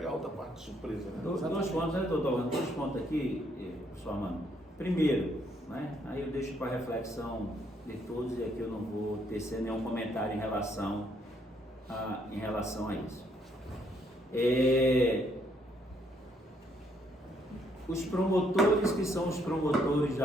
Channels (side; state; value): both; normal; correlation 0.70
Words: a outra parte de surpresa, né? Dois pontos, né, doutor? Dois pontos aqui, professor Armando. Primeiro, né, aí eu deixo para reflexão de todos e aqui eu não vou tecer nenhum comentário em relação a isso. Os promotores que são os promotores